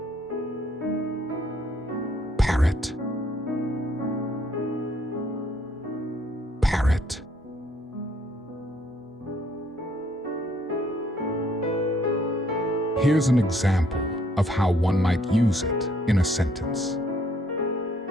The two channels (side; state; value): both; normal; correlation 0.66